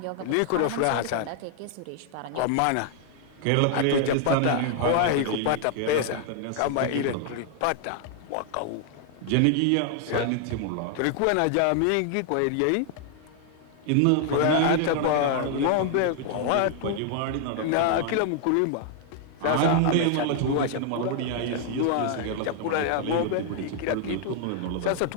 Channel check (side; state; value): both; different; correlation 0.00